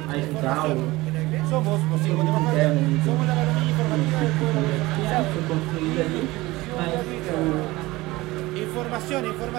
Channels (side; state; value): left; quieter; 19.9 dB